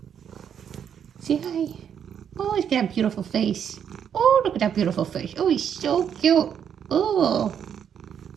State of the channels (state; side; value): quieter; left; 8.4 dB